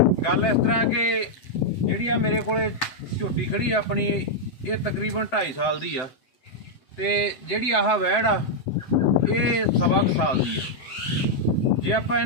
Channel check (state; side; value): late; right; 7.8 ms